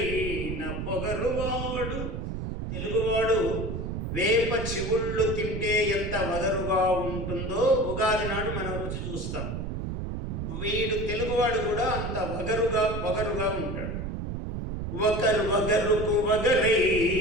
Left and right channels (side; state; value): right; noise; rumble, 4 dB below the sound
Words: పొగరువాడు. తెలుగువాడు వేప చివుళ్ళు తింటే ఎంత వగరుగా ఉంటుందో ఉగాది నాడు మనం రుచి చూస్తాం. వీడు తెలుగువాడు కూడా అంత పొగరుగా ఉంటాడు. వగరుకు